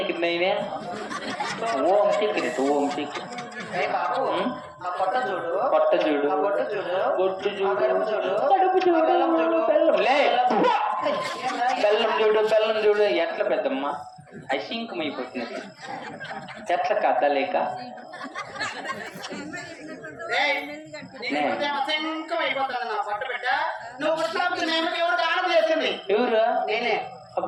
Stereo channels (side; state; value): both; identical; correlation 1.00